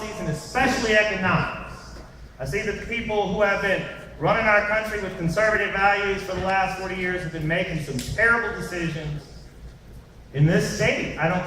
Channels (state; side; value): identical; both; correlation 1.00